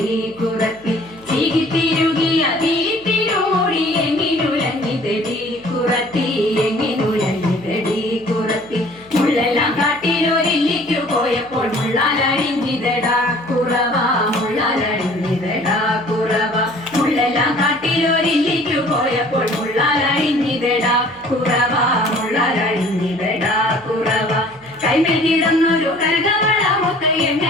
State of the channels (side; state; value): right; noise; hum, 27 dB below the sound